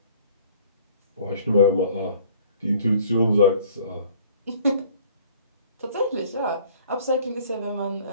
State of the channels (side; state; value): both; inverted; correlation -0.53